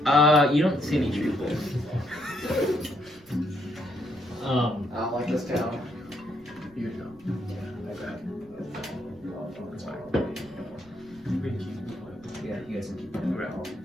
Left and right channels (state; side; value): noise; right; rumble, 27 dB below the sound